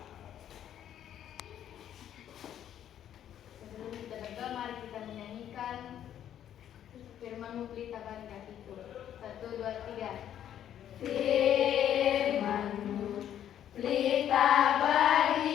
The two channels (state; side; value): quieter; right; 10.5 dB